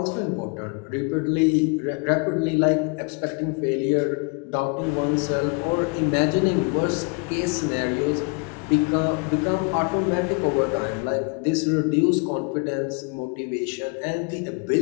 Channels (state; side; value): quieter; right; 34.5 dB